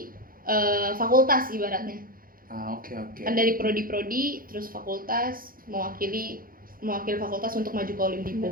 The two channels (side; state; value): left; late; 0.41 ms